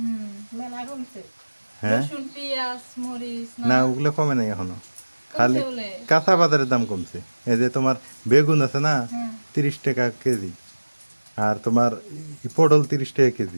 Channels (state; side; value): inverted; both; correlation -1.00